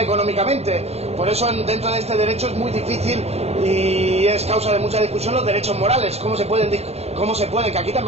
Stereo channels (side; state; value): left; late; 0.30 ms